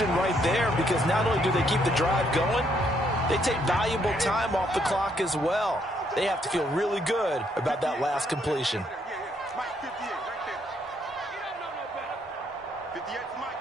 right there because not only do they keep the drive going, they take valuable time off the clock as well. They have to feel really good about that last completion. Mike, 58, right there. You don't know no better. 58 for Mike,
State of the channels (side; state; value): both; normal; correlation 0.72